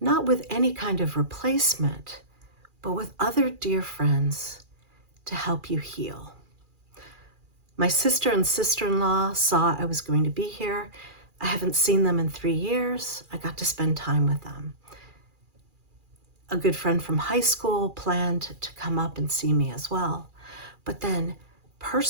with any kind of replacement, but with other dear friends to help you heal. My sister and sister-in-law saw I was going to be here. I haven't seen them in 3 years. I got to spend time with them. A good friend from high school planned to come up and see me as well. But then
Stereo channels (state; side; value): late; left; 2.4 ms